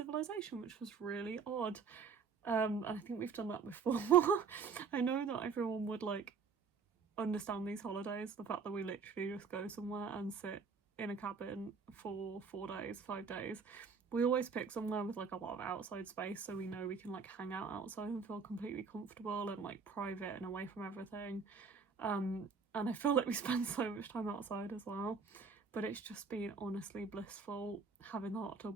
which was really odd. And I think we've done that before. I know that everyone would like understand these holidays, the fact that we literally just go somewhere and sit in a cabin for 4 days, 5 days. We always pick somewhere with like a lot of outside space, so we know we can like hang out outside and feel completely comfortable and like private and away from everything. And I feel like we spend so much time outside as well. But it's just been honestly blissful. Having the hot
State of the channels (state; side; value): quieter; left; 5.5 dB